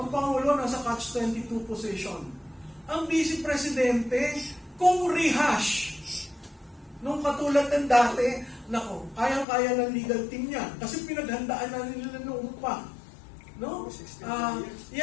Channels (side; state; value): right; drops out; at 9.5 s